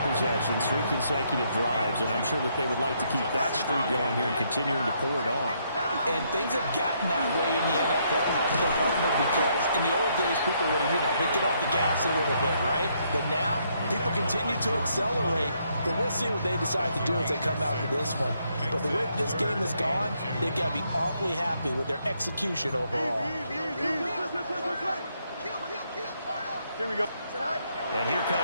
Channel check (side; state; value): both; inverted; correlation -0.73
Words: possessions, 3 consecutive drives, and I'm sure that they would like to keep that streak going here and continuing to pour it on. And things have gotten that way in the NFL, haven't they, partner? Because in the old days, people would have, they'd get off the gas a little bit, right? But now, people continue to accelerate. But we'll see what they decide to do as they come out to this one. But the way this game has gone, they've got to be awfully happy with their execution overall. Here we go. And here